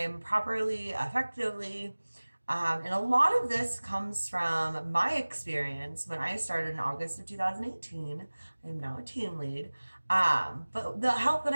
properly, effectively? And a lot of this comes from my experience when I started in August of 2018. I am now a team lead. But the help that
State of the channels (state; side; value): inverted; both; correlation -1.00